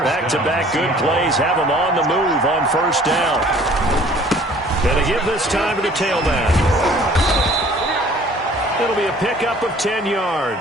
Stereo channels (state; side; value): normal; both; correlation 0.53